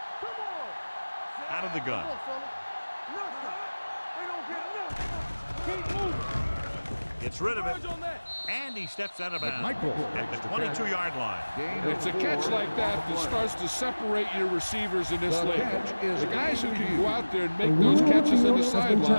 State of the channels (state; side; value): inverted; both; correlation -1.00